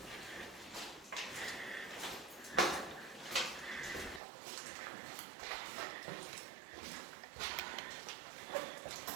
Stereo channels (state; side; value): drops out; left; at 4.2 s